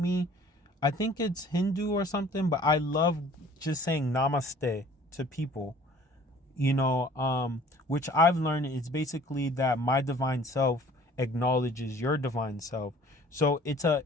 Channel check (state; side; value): normal; both; correlation 0.51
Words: I think it's Hindu or something, but I love just saying namaste to people. You know, which I've learned is basically that my divine self acknowledges your divine self. So it's